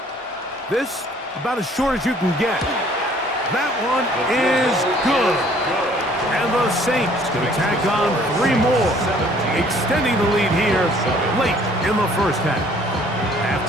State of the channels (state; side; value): normal; both; correlation 0.57